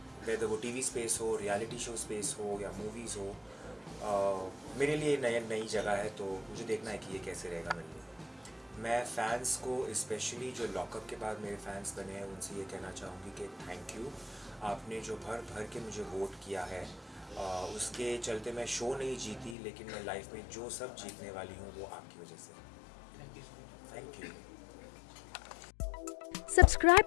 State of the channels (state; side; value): drops out; right; at 19.6 s